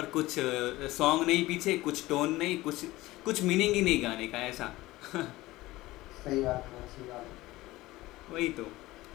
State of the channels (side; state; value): right; quieter; 18.4 dB